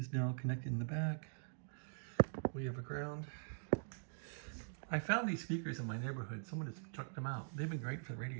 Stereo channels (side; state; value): left; silent; digital silence